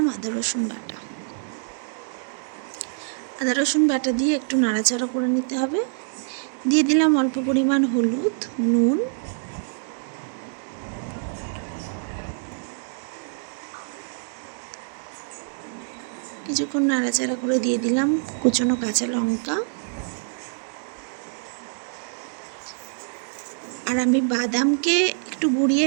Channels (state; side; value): silent; left; digital silence